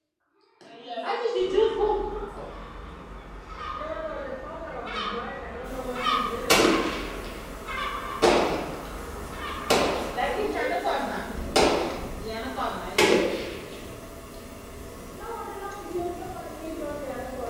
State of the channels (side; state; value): both; identical; correlation 1.00